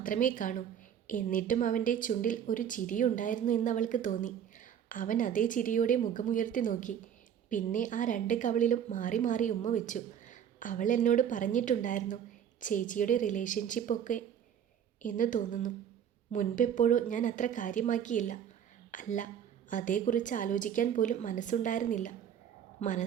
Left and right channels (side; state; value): left; quieter; 9.1 dB